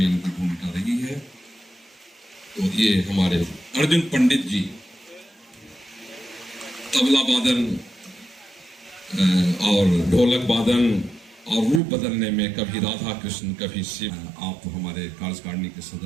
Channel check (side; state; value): left; drops out; at 11.8 s